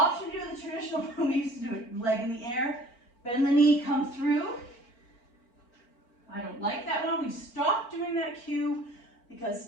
to do the traditional one we used to do it. Leg in the air. Bend the knee, come through. I don't like that one. We stopped doing that cue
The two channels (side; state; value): right; late; 4.4 ms